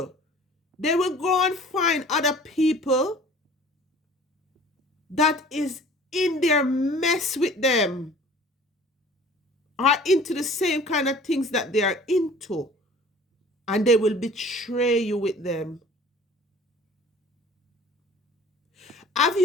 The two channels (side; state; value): both; normal; correlation 0.48